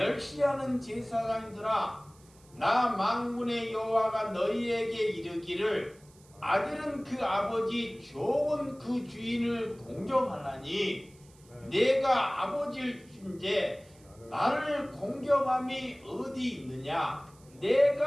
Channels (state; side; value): noise; right; hiss, 28 dB below the sound